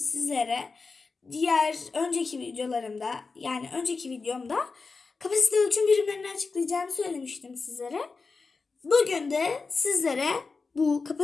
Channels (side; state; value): right; quieter; 4.4 dB